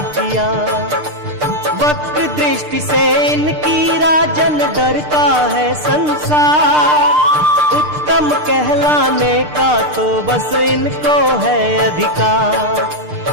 किया। वक्र दृष्टि से इनकी राजन डरता है संसार, उत्तम कहलाने का तो बस इनको है अधिकार।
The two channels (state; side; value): late; left; 6.7 ms